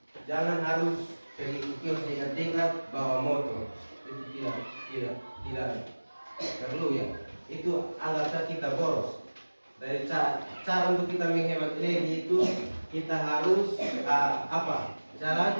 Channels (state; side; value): inverted; both; correlation -1.00